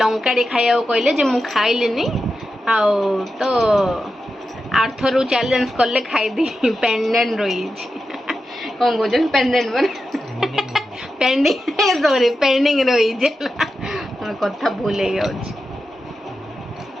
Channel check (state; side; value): normal; both; correlation 0.90